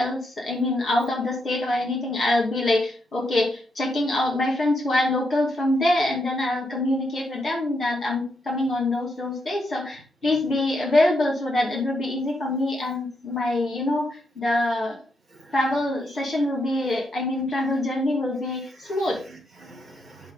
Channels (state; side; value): normal; both; correlation 0.80